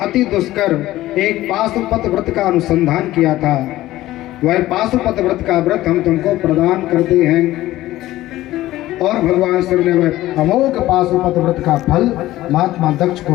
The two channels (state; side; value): quieter; right; 15.8 dB